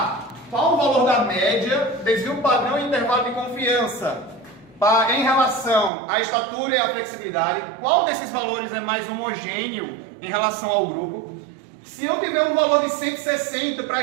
qual o valor da média, desvio padrão e intervalo de confiança em relação à estatura e à flexibilidade, qual desses valores é mais homogêneo em relação ao grupo. Se eu tiver um valor de 160 para a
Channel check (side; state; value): left; drops out; at 5.9 s